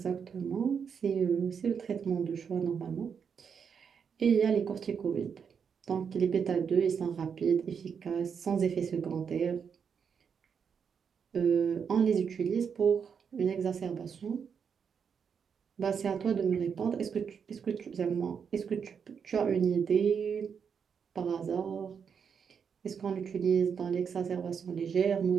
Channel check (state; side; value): quieter; left; 6.8 dB